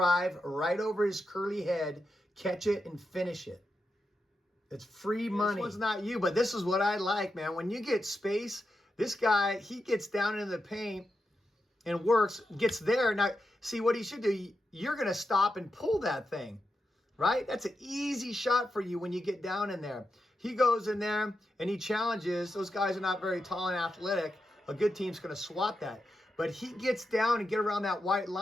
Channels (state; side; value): normal; both; correlation 0.87